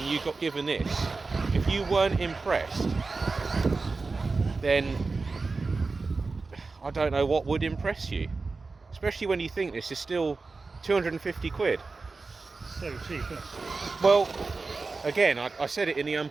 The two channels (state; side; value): quieter; left; 4.0 dB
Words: you got given this. If you weren't impressed, then I don't know what would impress you. Especially when you think this is still 250 quid. So cheap, isn't it? Well, again, I said it in the